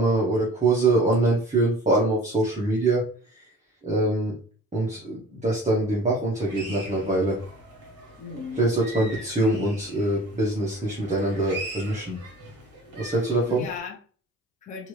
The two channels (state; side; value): normal; both; correlation 0.44